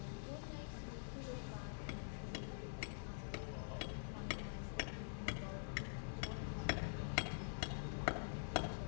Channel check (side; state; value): right; silent; digital silence